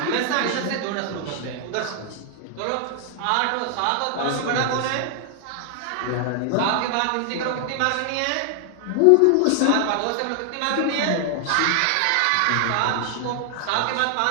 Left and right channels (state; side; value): different; both; correlation 0.00